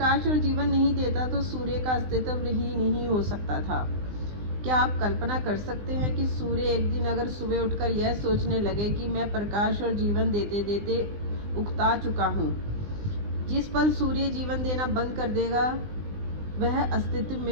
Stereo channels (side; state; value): left; late; 20 ms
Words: और जीवन नहीं देता तो सूर्य का अस्तित्व ही नहीं हो सकता था। क्या आप कल्पना कर सकते हैं कि सूर्य एक दिन अगर सुबह उठकर यह सोचने लगे कि मैं प्रकाश और जीवन देते देते उकता चुका हूँ। जिस पल सूर्य जीवन देना बंद कर देगा वह अस्तित्व